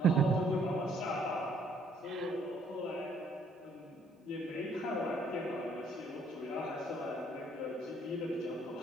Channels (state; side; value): normal; both; correlation 0.65